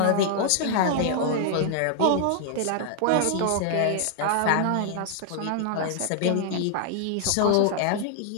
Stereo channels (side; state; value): both; different; correlation 0.00